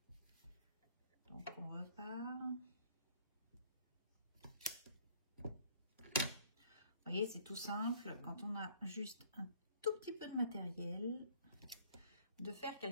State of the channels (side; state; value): both; inverted; correlation -0.58